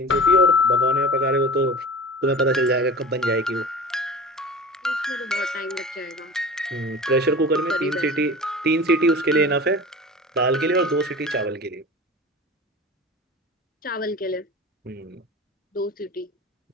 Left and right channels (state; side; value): normal; both; correlation 0.36